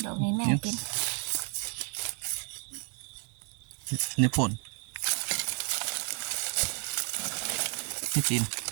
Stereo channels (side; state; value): left; quieter; 39.3 dB